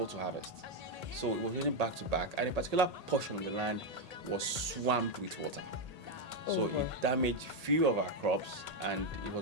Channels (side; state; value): left; late; 1.8 ms